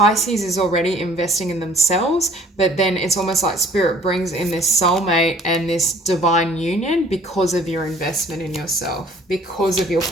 is already investing in themselves, but then it's almost like Spirit brings in this soulmate and this divine union because of your investment in yourself, because of your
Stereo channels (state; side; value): normal; both; correlation 0.54